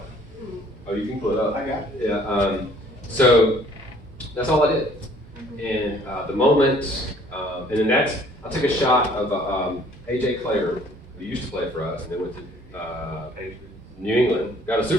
Oh, you can pull it up. I got it. Yeah. So that's all I did. And the moment, and then I took a shot of AJ Clare, who used to play for us, and then went to New England, got a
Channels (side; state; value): both; normal; correlation 0.57